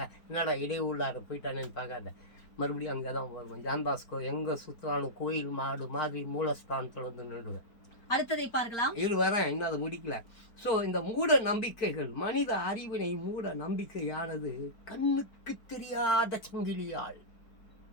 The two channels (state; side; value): late; right; 4.4 ms